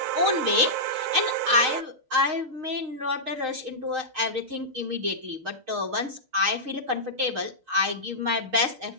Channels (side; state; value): left; late; 6.4 ms